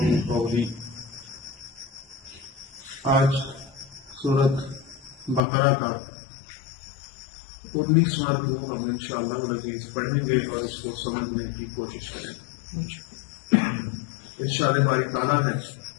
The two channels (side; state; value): right; drops out; at 5.4 s